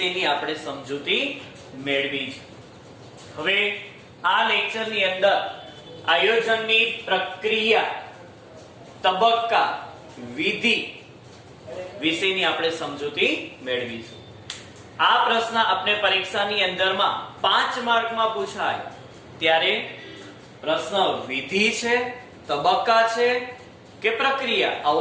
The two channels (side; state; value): both; identical; correlation 1.00